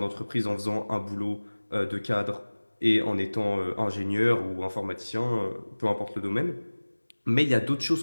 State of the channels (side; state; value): both; inverted; correlation -1.00